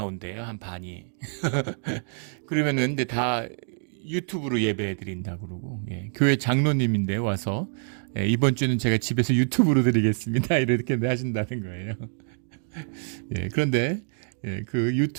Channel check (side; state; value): left; silent; 61 dB below the other